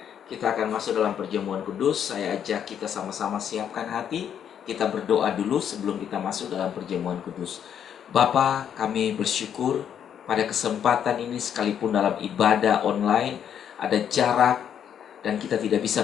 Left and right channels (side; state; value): right; quieter; 8.9 dB